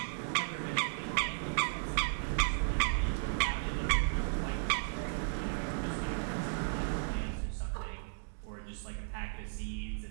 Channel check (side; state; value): left; silent; digital silence